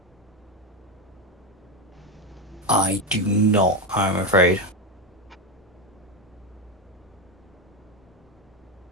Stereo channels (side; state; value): both; normal; correlation 0.12